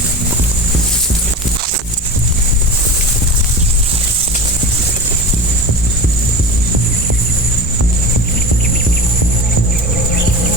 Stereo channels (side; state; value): both; normal; correlation 0.31